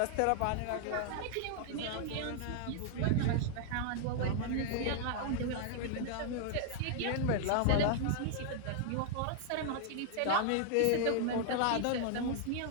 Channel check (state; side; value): different; both; correlation 0.00